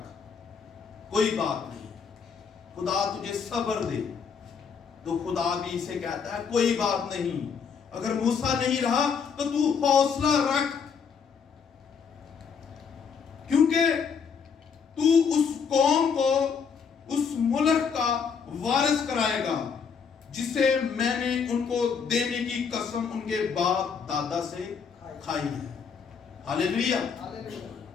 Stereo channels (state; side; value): quieter; right; 6.3 dB